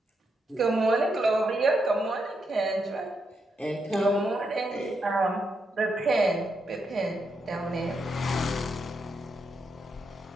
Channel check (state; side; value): normal; both; correlation 0.82